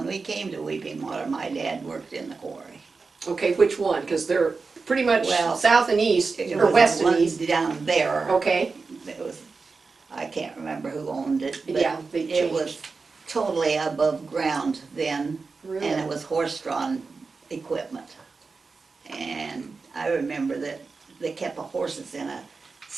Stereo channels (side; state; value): left; quieter; 4.4 dB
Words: we came to Weeping Water, my dad worked in the quarry. Okay, which one? Because they're pretty much Well, south and east, It or was west the and one east. down there. Okay, It was, I can't remember who owned it, but yeah, they it was changed. totally above ground then, Really? and it was horse-drawn equipment. And I remember that they kept the horses in a